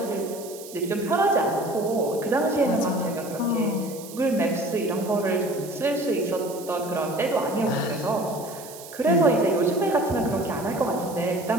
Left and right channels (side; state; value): right; noise; hiss, 16 dB below the sound